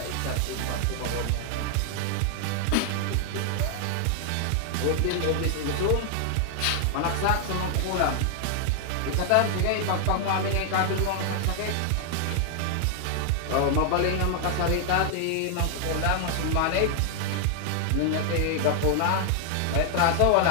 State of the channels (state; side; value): different; both; correlation 0.00